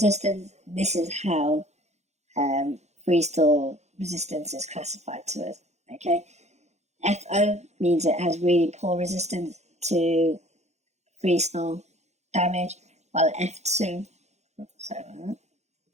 this is how freeze-thaw resistance is classified to us. Okay, FO means it has really poor resistance to freeze-thaw, damage, while F2,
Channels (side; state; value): left; late; 0.33 ms